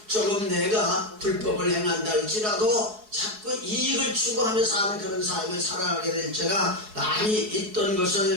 조금 내가 불법을 행한다 할지라도 자꾸 이익을 추구하며 사는 그런 삶을 살아가게 될 때가 많이 있던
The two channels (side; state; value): left; late; 4.7 ms